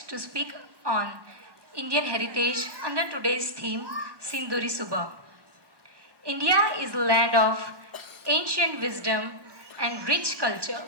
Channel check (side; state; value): left; late; 1.1 ms